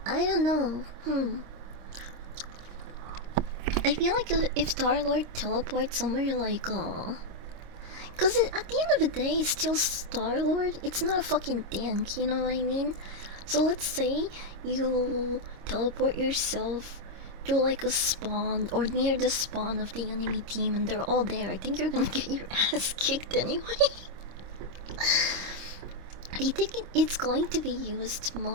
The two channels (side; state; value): left; late; 26 ms